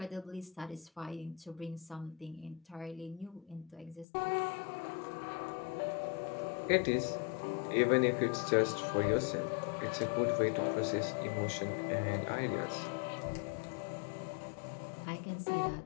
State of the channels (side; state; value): right; drops out; at 4.0 s